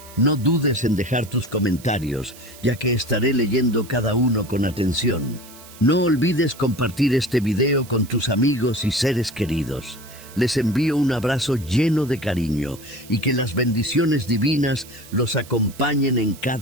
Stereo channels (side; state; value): right; noise; hiss, 20 dB below the sound